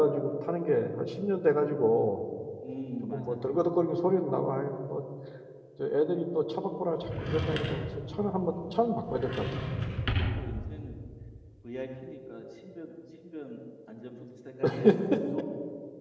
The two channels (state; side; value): identical; both; correlation 1.00